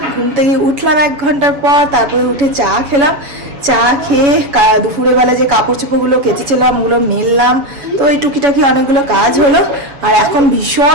ঘুম থেকে উঠলাম 1 ঘন্টার পর, তারপরে উঠে চা খেলাম। চা খেয়ে দুপুরের বেলা যে কাপড় চোপড়গুলো কেচেছিলাম ওগুলো মেললাম। তো এই টুকিটাকি অনেকগুলো কাজ হলো। আর এখন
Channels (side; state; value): left; late; 7.0 ms